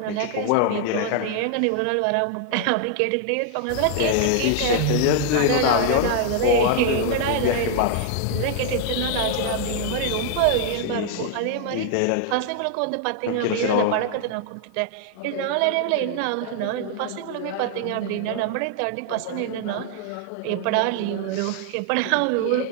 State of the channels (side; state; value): both; different; correlation 0.00